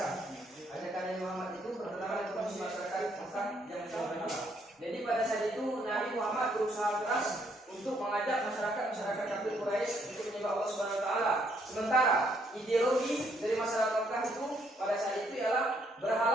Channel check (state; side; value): normal; both; correlation 0.70